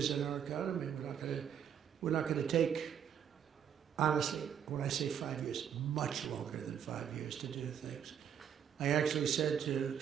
and our economy. We're not going to take, honestly, when I say 5 years, much longer than 5 years to do things. I actually said to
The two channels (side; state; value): left; quieter; 8.6 dB